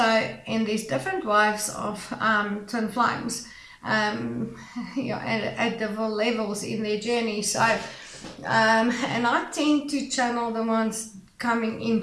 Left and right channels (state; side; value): identical; both; correlation 1.00